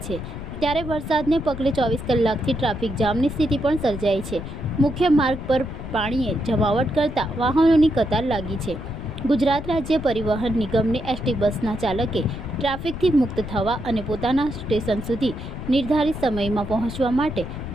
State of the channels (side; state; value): left; noise; rumble, 9 dB below the sound